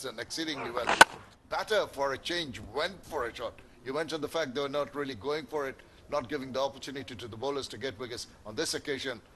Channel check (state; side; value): identical; both; correlation 1.00